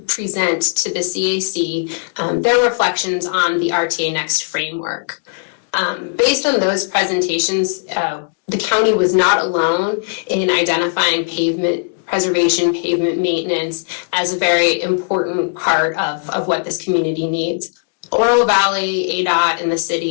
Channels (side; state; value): right; silent; digital silence